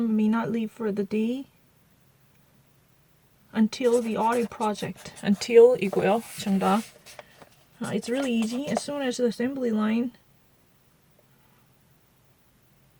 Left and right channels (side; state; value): both; identical; correlation 1.00